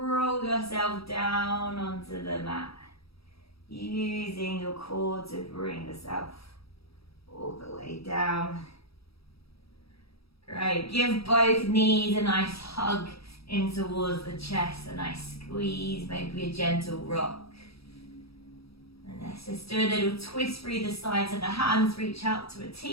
yourself down onto the mat. Using your core to bring yourself all the way down. Great. Give both knees a nice hug in towards the chest. A nice squeeze. Maybe a gentle rock. And let's just do a little twist through the sides of the hands. Reach out to a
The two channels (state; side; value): late; right; 0.77 ms